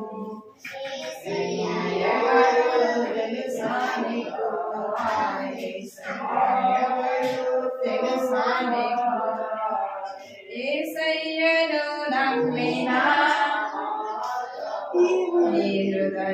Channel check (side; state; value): both; identical; correlation 1.00